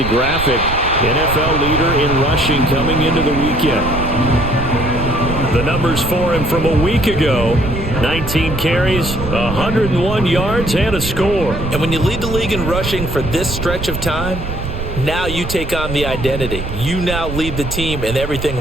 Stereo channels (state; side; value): noise; right; rumble, 6 dB below the sound